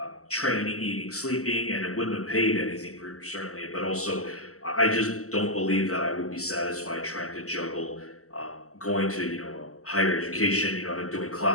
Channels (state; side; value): late; right; 0.65 ms